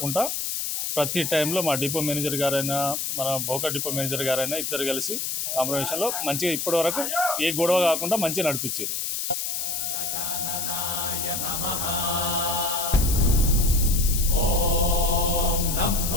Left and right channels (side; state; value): left; noise; hiss, 2 dB below the sound